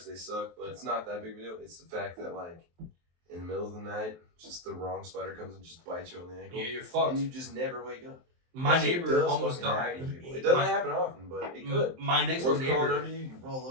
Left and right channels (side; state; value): left; late; 23 ms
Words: they suck, but it's not that big of a deal. It's the fact that, like, in the middle of the night, just the wrong spider comes and just bites you on the ankle. Yeah, you're fucked. And you just never wake up. My neighbor almost died. It doesn't happen often, but it could. My next door neighbor under you roll